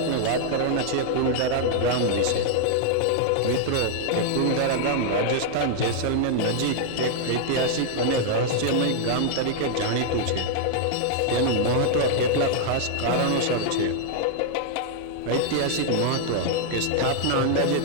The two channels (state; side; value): different; both; correlation -0.01